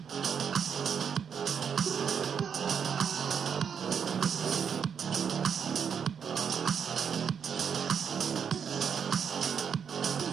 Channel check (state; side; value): quieter; left; 7.2 dB